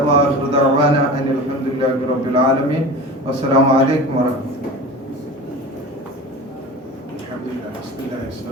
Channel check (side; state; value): both; normal; correlation 0.33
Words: വആഖിറു ദഅവാന അനിൽ ഹംദുലില്ലാഹി റബ്ബിൽ ആലമീൻ. വസ്സലാമു അലൈക്കും വറഹ്മത്തുള്ളാഹി.